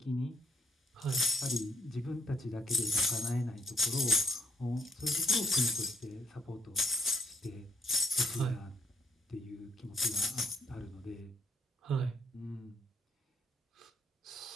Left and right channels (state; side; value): normal; both; correlation 0.74